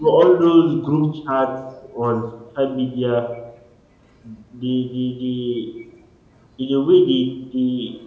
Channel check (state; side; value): identical; both; correlation 1.00